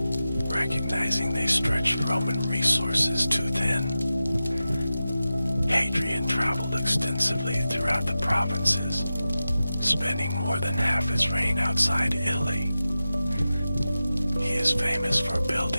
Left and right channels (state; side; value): inverted; both; correlation -0.93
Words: recognizing they stretched Roman resources too thin. Hadrian traveled extensively throughout the provinces, spending more than half his reign outside Italy. He is famous for